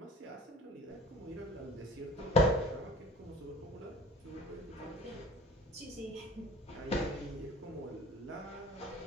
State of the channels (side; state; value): both; normal; correlation 0.45